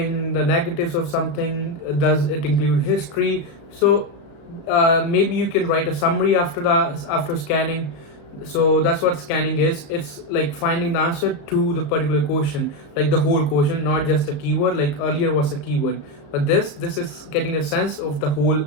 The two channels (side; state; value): right; late; 34 ms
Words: the negatives of something? Does it include history? So maybe you can write a summary after scanning. So that's what scanning is. It's like finding the answer to the particular question, like the whole question, not just a keyword. Like earlier was a keyword, but this is getting a sense of the whole